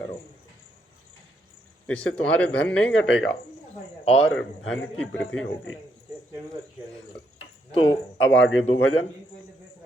इससे तुम्हारे धन नहीं घटेगा और धन की वृद्धि होगी। तो अब आगे दो भजन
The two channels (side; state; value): both; normal; correlation 0.76